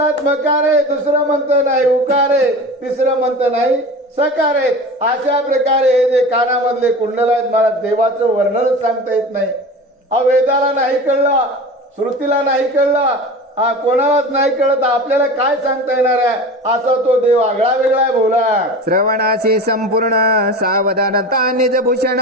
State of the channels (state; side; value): normal; both; correlation 0.33